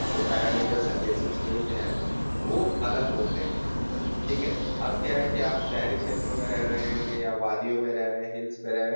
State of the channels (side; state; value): both; inverted; correlation -1.00